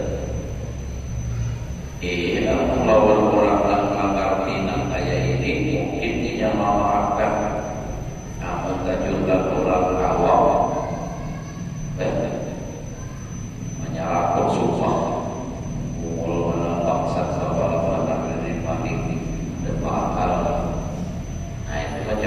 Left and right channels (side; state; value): both; identical; correlation 1.00